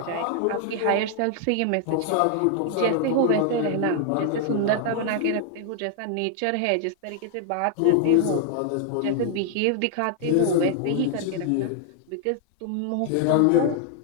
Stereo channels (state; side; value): different; both; correlation 0.00